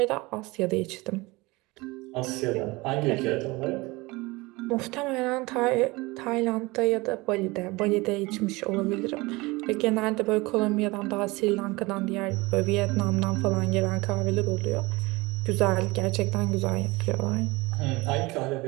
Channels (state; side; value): quieter; left; 22.8 dB